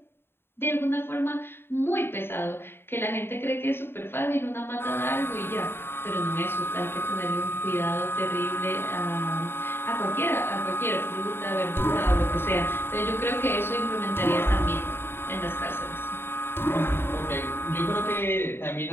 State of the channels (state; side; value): late; right; 0.11 ms